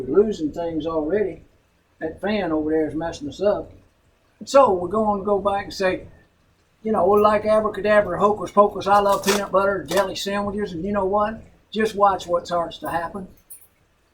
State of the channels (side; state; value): both; identical; correlation 1.00